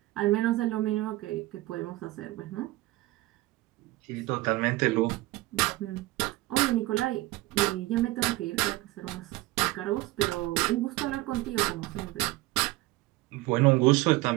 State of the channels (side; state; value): left; quieter; 19.1 dB